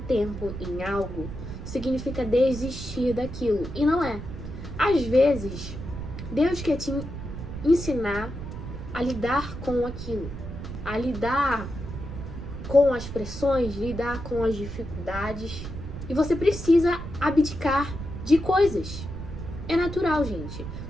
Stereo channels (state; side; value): noise; right; rumble, 8 dB below the sound